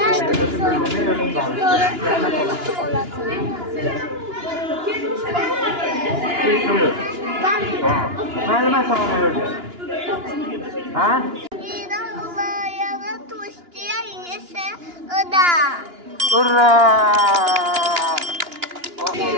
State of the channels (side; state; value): left; late; 2.9 ms